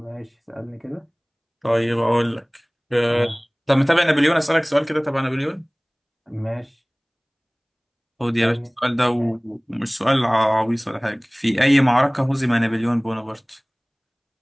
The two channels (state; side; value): identical; both; correlation 1.00